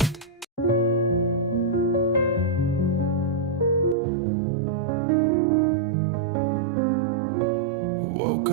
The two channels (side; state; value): left; drops out; at 4.0 s